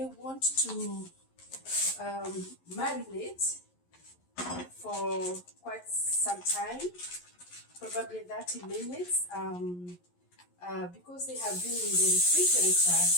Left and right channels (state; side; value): late; right; 11 ms